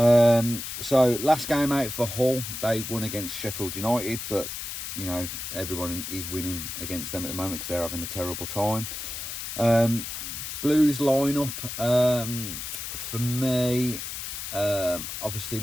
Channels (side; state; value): left; noise; hiss, 6 dB below the sound